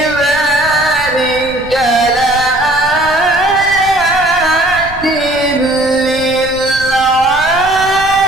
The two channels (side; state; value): right; noise; rumble, 16 dB below the sound